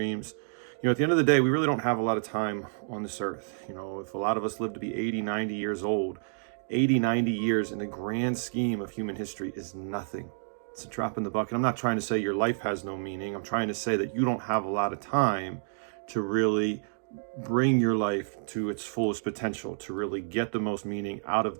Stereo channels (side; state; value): left; silent; digital silence